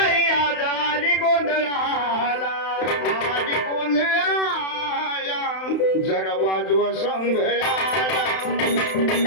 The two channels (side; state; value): right; late; 31 ms